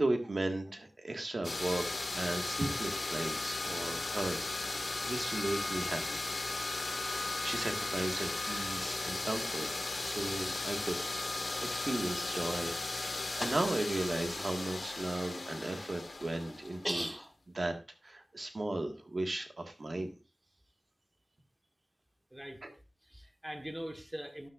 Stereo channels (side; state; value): both; normal; correlation 0.96